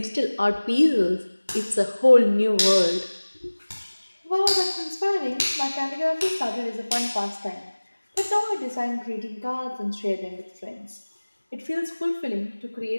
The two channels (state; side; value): inverted; both; correlation -1.00